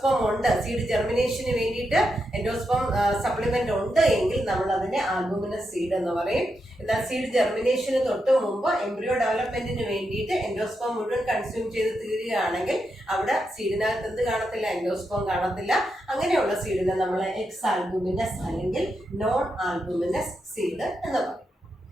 ഉണ്ട്, സീഡ് ജെർമിനേഷന് വേണ്ടിയിട്ട് എൻഡോസ്പോം സപ്ലിമെന്റ് ഉണ്ട് എങ്കിൽ നമ്മൾ അതിനെ ആൽബുമിനസ് സീഡ് എന്ന് പറയും. എന്നാൽ സീഡ് ജെർമിനേഷന് തൊട്ട് മുമ്പ് എംബ്രിയോ ഡെവലപ്മെന്റിന് വേണ്ടിയിട്ട് എൻഡോസ്പോം മുഴുവൻ കൺസ്യൂം ചെയ്ത് തീരുകയാണെങ്കിൽ അവിടെ സീഡിനകത്ത് എന്ത് കാണത്തില്ല? എൻഡോസ്പോം കാണത്തില്ല. അങ്ങനെയുള്ള സീഡിനെ നമ്മൾ എക്സ് ആൽബുമിനസ് അല്ലെങ്കിൽ നോൺ ആൽബുമിനസ് സീഡ് എന്ന് പറയും.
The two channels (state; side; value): normal; both; correlation 0.85